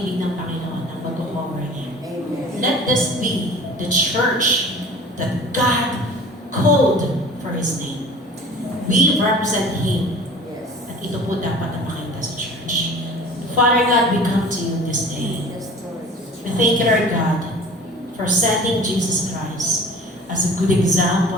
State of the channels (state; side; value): normal; both; correlation 0.43